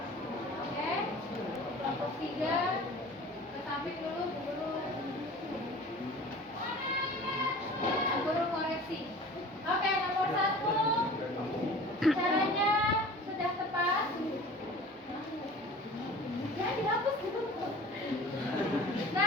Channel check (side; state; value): both; normal; correlation 0.42